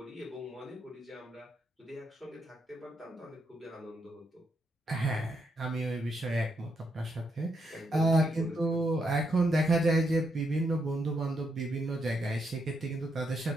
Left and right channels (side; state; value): both; normal; correlation 0.79